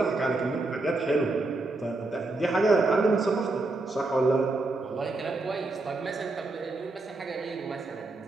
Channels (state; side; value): quieter; left; 3.2 dB